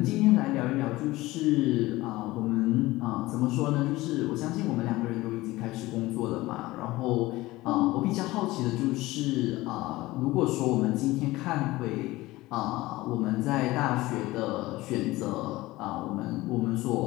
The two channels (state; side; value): quieter; right; 18.9 dB